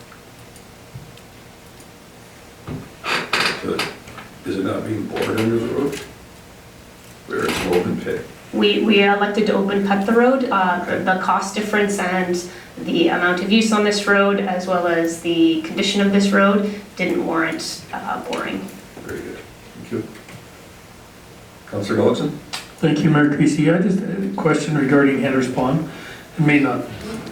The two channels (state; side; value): identical; both; correlation 1.00